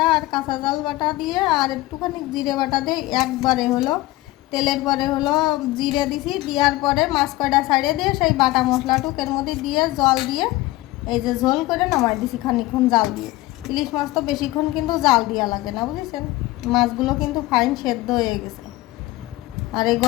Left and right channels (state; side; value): quieter; right; 18.6 dB